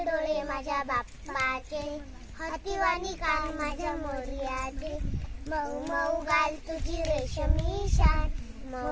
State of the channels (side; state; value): both; identical; correlation 1.00